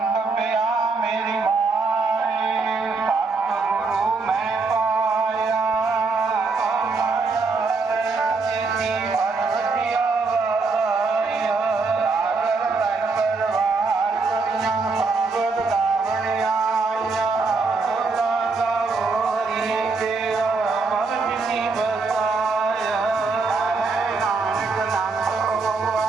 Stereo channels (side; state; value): left; quieter; 4.2 dB